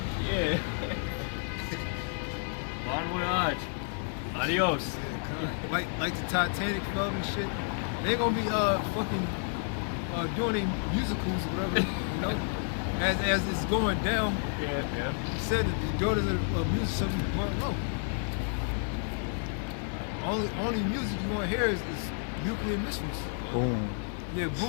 Yeah. Bon voyage. Adios. Like the Titanic fell and shit. They ain't gonna be fucking doing any musicals or whatever, you know. As it's going down, Yeah. he said that the daughters of music shall be burnt low. Only music you want to hear is nuclear missiles. Boom. Yeah,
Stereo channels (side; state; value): right; silent; 57 dB below the other